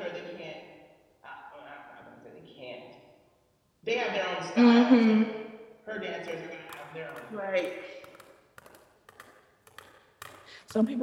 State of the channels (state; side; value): identical; both; correlation 1.00